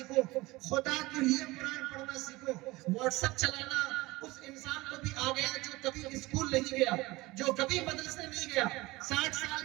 خدا کے لیے قرآن پڑھنا سیکھو. واٹس ایپ چلانا اس انسان کو بھی آ گیا جو کبھی اسکول نہیں گیا، جو کبھی مدرسے نہیں گیا. 60 سال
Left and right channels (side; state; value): left; quieter; 20.9 dB